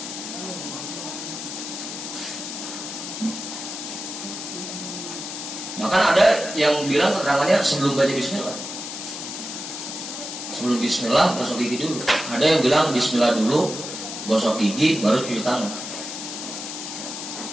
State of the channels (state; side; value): noise; left; hiss, 7 dB below the sound